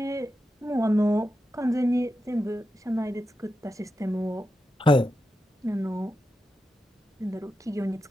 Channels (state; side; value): normal; both; correlation 0.89